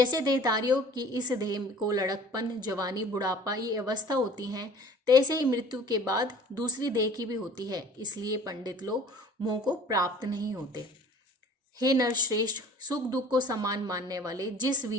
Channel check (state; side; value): normal; both; correlation 0.48